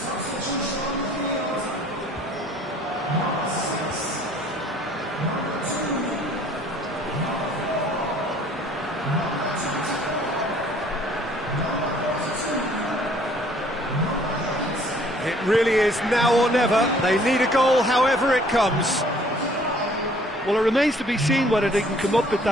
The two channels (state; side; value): normal; both; correlation 0.57